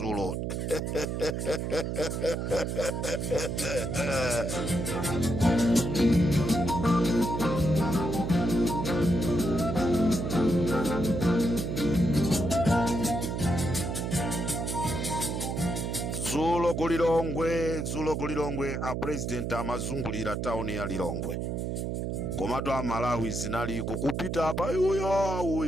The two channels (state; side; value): noise; right; hum, 2 dB below the sound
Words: Zulo kulilongwe a president amazungulira town ya Lilongwe. Komatu a Malawi zinali kupita apa